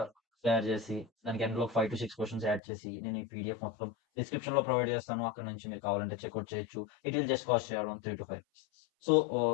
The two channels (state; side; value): drops out; right; at 2.6 s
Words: తయారు చేసి దానికి ఎండ్లో 5 to 6 క్వశ్చన్స్ యాడ్ చేసి నేను ఈ పీడిఎఫ్ మొత్తం డిస్క్రిప్షన్ లో ప్రొవైడ్ చేస్తాను. అక్కడ నుంచి మీరు కావాలంటే చెక్అవుట్ చేయొచ్చు. It will just cost around 3 to 5. So